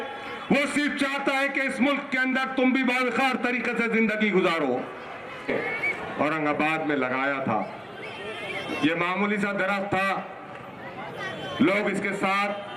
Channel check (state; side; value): identical; both; correlation 1.00